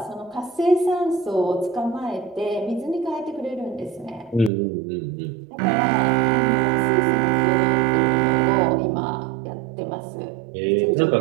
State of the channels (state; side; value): drops out; left; at 4.5 s